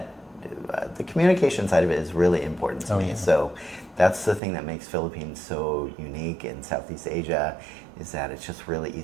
the communication side of it is really important to me. So that's the thing that makes Philippines so unique in Southeast Asia, is that it's just really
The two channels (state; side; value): drops out; left; at 4.4 s